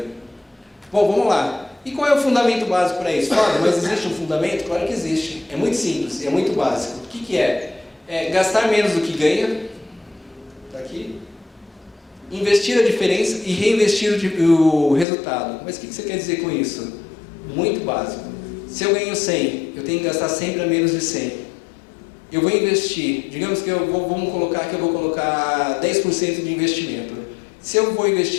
Bom, vamos lá. E qual é o fundamento básico para isso? Fala, mas existe um fundamento? Claro que existe. É muito simples, é muito básico. O que é? Gastar menos do que ganha. Está aqui. Investir a diferença e reinvestir o resultado. Mas o que você quer dizer com isso? Muito básico. Se eu ganho 100, eu tenho que gastar sempre a menos de 100. Eu vou investir, digamos que vamos colocar que eu vou colocar 10% de investimento. Se eu vou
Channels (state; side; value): drops out; right; at 15.1 s